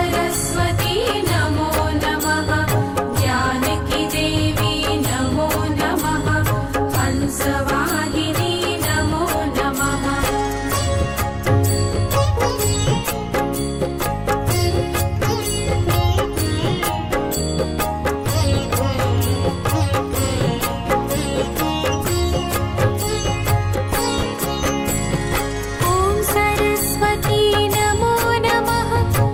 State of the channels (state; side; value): identical; both; correlation 1.00